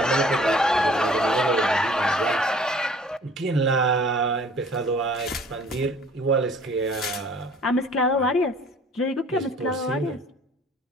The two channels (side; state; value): both; normal; correlation 0.52